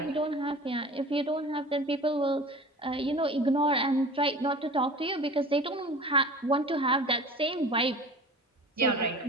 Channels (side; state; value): both; normal; correlation 0.39